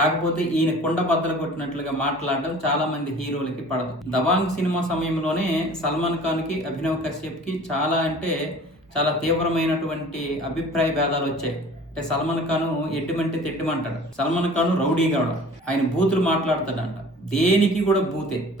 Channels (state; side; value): normal; both; correlation 0.45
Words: ఈయన కుండ బద్దలు కొట్టినట్లుగా మాట్లాడడం చాలా మంది హీరోలకి పడదు. దబాంగ్ సినిమా సమయంలోనే సల్మాన్ ఖాన్ కి అభినవ్ కశ్యప్ కి చాలా తీవ్రమైనటువంటి అభిప్రాయ భేదాలు వచ్చాయి. అంటే సల్మాన్ ఖాన్ ఎడ్డిమంటే తిట్టమంటాడు. సల్మాన్ ఖాన్ రౌడీగా ఆయన బూతులు మాట్లాడతాడంట. దేనికి కూడా బూతే,